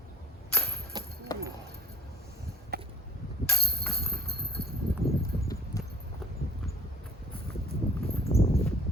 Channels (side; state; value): both; normal; correlation 0.49